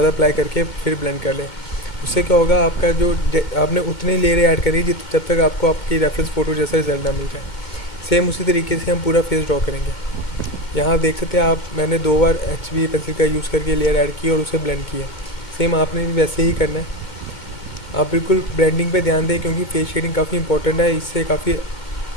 अप्लाई करके फिर ब्लेंड कर लें। उससे क्या होगा, आपका जो आपने उतनी लेयर ऐड करी जब तक आपको आपकी रेफरेंस फ़ोटो जैसा रिजल्ट ना मिल जाए। सेम उसी तरीके से हम पूरा फेस ड्रॉ करेंगे। यहाँ देख सकते हैं आप, मैंने 2 बार HB पेंसिल का यूज़ करके लेयर ऐड की और उसे ब्लेंड किया। सेम आपने भी वैसे ही करना है। आप बिल्कुल ब्लेंडिंग पे ध्यान दें क्योंकि फेस शेडिंग काफ़ी इंपॉर्टेंट है। इससे काफ़ी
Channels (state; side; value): late; right; 2.2 ms